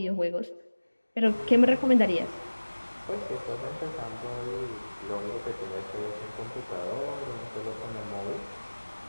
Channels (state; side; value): inverted; both; correlation -1.00